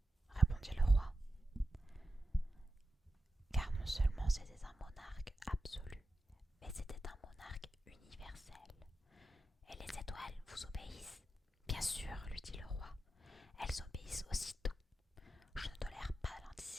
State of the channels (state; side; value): normal; both; correlation 0.91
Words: répondit le roi. Car non seulement c'était un monarque absolu, mais c'était un monarque universel. Et les étoiles vous obéissent? Bien sûr, lui dit le roi. Elles obéissent aussitôt. Je ne tolère pas